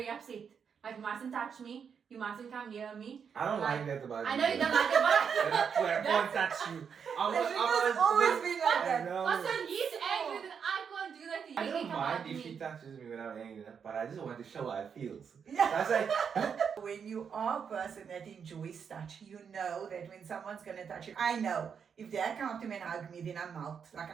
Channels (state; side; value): quieter; left; 6.9 dB